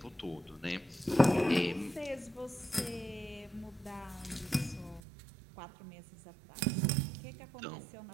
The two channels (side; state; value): left; drops out; at 5.0 s